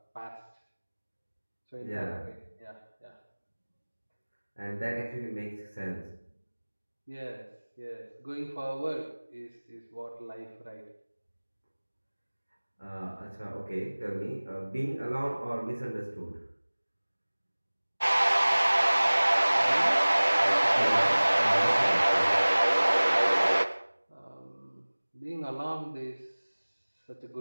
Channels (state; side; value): inverted; both; correlation -1.00